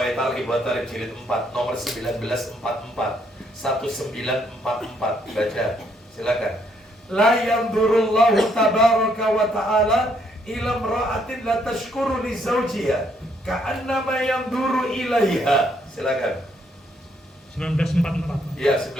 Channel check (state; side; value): normal; both; correlation 0.71